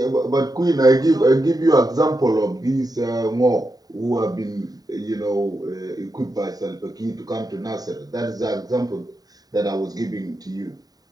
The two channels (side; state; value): left; late; 0.18 ms